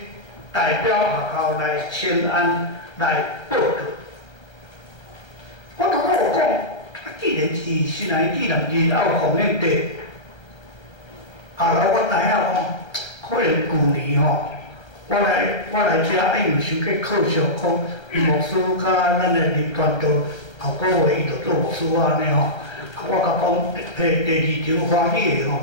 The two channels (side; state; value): right; late; 1.3 ms